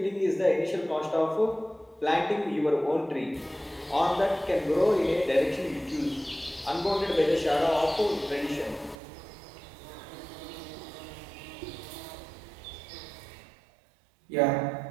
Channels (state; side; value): drops out; left; at 9.0 s